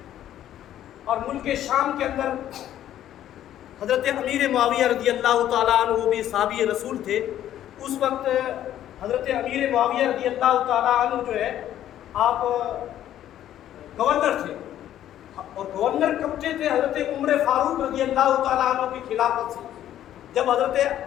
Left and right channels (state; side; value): quieter; right; 11.7 dB